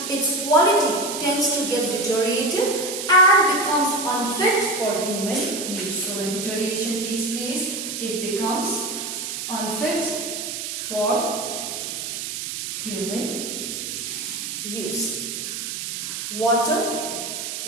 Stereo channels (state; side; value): noise; right; hiss, 5 dB below the sound